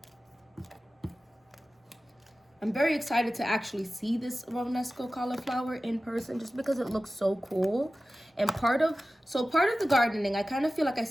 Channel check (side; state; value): both; normal; correlation 0.95